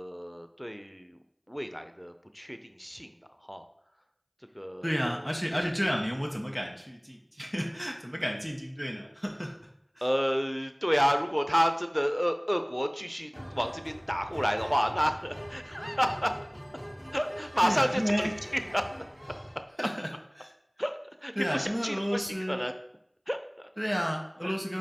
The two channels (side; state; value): both; identical; correlation 1.00